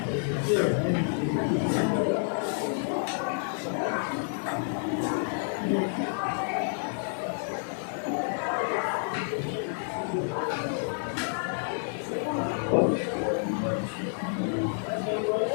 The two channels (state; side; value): silent; right; 58 dB below the other